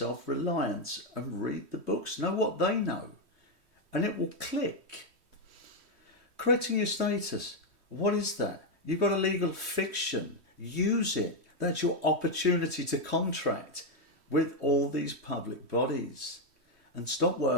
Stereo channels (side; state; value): left; late; 3.1 ms